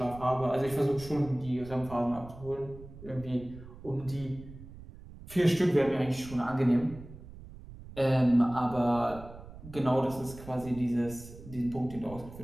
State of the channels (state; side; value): noise; right; rumble, 16 dB below the sound